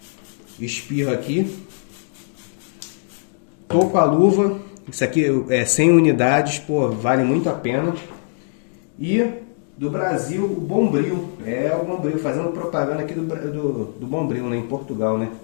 Espirro aqui. Tô com a luva. Isso aqui é 100 unidades, pô, vale muito a pena. E do Brasil, o Bombril. É o Bombril, fazendo propaganda aqui do Bombril, né, em Portugal, né?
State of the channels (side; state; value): right; silent; digital silence